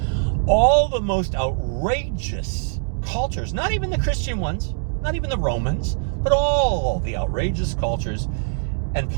All the most outrageous cultures, not even the Christian ones, not even the Romans, but all the outrageous cultures and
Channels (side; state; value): left; silent; digital silence